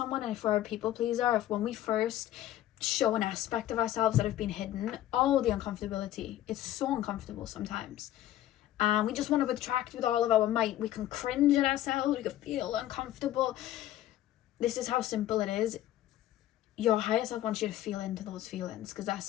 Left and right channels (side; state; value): right; quieter; 13.3 dB